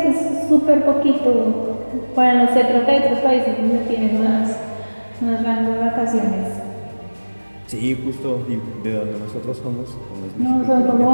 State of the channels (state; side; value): inverted; both; correlation -1.00